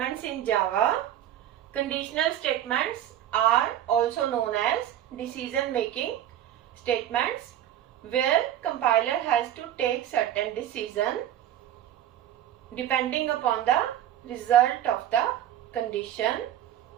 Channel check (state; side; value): quieter; left; 11.5 dB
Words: in Java. Conditional statements are also known as decision-making statements, where compiler has to take certain decision depending upon the result of the condition